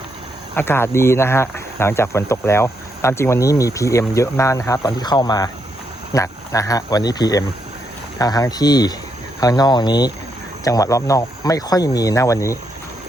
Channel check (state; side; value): normal; both; correlation 0.79